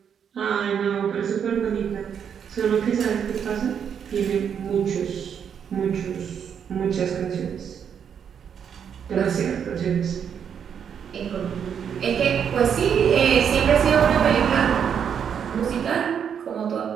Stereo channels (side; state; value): left; quieter; 7.8 dB